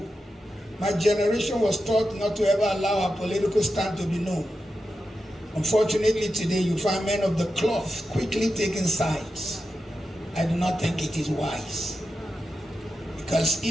my generation was taught not to ever allow our political stand to be known. Unfortunately, today you find men of the cloth quickly taking sides. I do not think it is wise. Because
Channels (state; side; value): normal; both; correlation 0.89